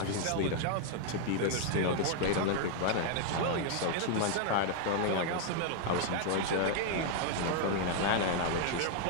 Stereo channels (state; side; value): different; both; correlation 0.00